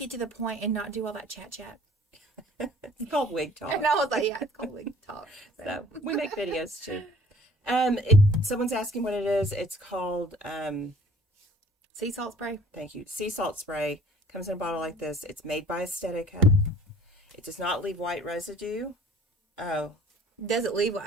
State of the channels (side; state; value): both; normal; correlation 0.53